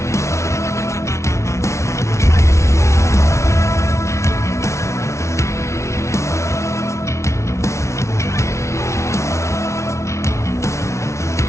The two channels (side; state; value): right; late; 0.13 ms